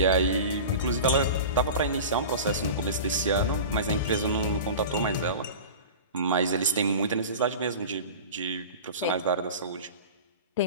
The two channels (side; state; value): both; inverted; correlation -0.33